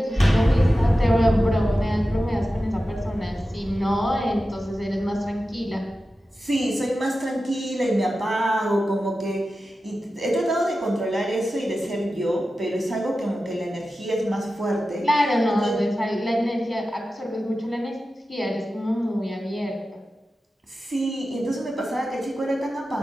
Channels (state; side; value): normal; both; correlation 0.93